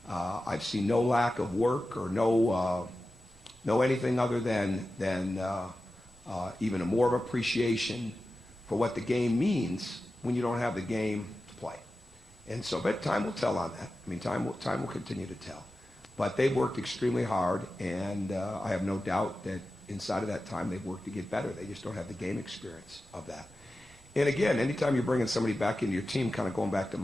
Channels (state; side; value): normal; both; correlation 0.93